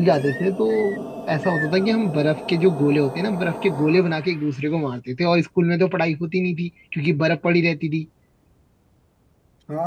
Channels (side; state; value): both; identical; correlation 1.00